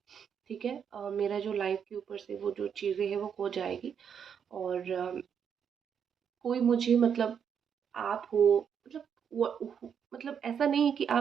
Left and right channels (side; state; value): left; quieter; 7.6 dB